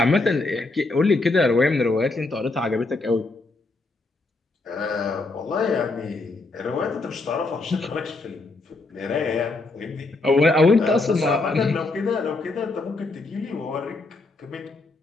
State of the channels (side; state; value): right; quieter; 3.3 dB